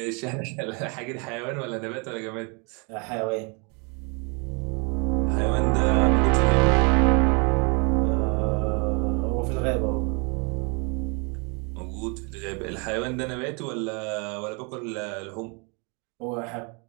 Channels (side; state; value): left; quieter; 33.4 dB